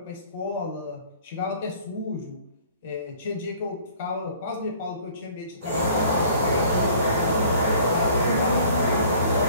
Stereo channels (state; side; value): inverted; both; correlation -0.51